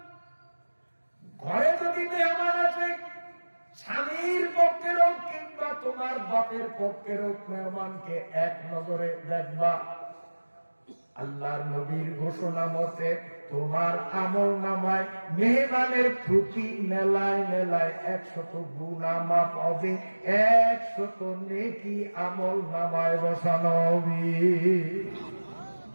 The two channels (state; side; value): inverted; both; correlation -1.00